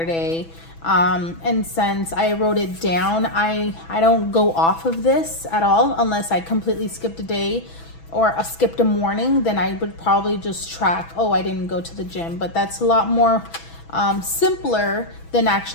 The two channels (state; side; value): late; right; 6.1 ms